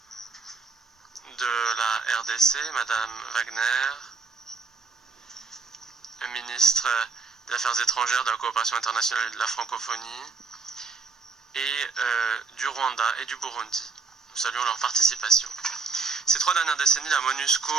de la RDC, Mme Wagner, le ministre des Affaires étrangères, de la coopération internationale et de la francophonie, et du Rwanda et du Burundi. Nous saluons leur participation. Ces 3 dernières décennies, la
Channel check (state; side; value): quieter; left; 4.7 dB